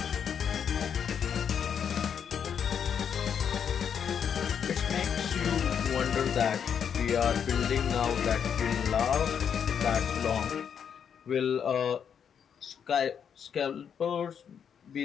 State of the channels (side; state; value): right; quieter; 7.8 dB